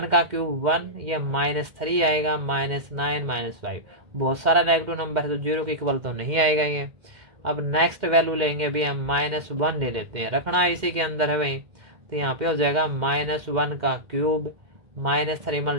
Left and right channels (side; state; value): left; late; 2.1 ms